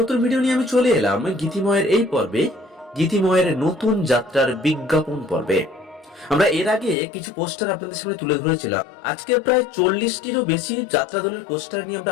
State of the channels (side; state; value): right; drops out; at 7.0 s